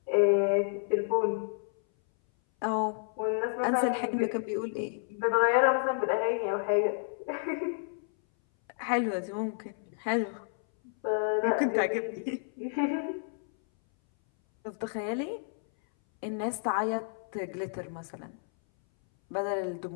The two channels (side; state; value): right; silent; 58 dB below the other